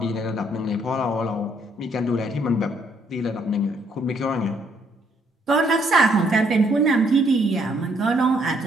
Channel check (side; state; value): both; normal; correlation 0.69